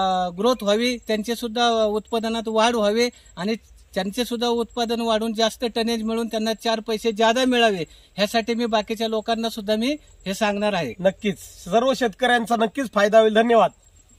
ग्रोथ व्हावी, त्यांचे सुद्धा उत्पादनात वाढ व्हावी आणि त्यांचे सुद्धा उत्पादन वाढून जास्त टनेज मिळून त्यांना 4 पैसे जादा मिळावे, ह्यासाठी मी बाकीच्या लोकांना सुद्धा मी हे सांगणार आहे। नक्कीच सर्व शेतकऱ्यांचा नक्कीच फायदा होईल। धन्यवाद।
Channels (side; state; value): both; identical; correlation 1.00